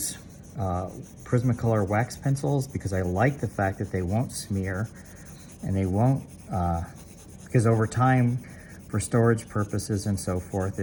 Prismacolor wax pencils because I like the fact that they won't smear, and they won't, because over time, for storage purposes and so forth,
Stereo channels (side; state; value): both; identical; correlation 1.00